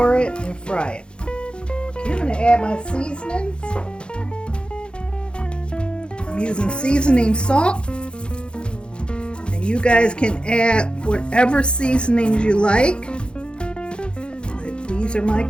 it and fry it. Okay, I'm going to add my seasonings. I'm using seasoning salt, and you guys can add whatever seasonings you like. These are my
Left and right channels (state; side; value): late; right; 0.054 ms